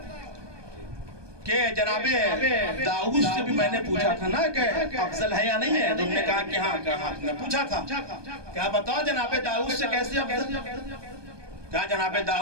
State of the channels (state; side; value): late; left; 1.2 ms